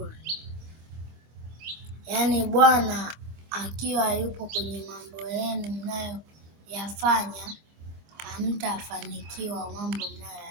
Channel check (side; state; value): left; late; 25 ms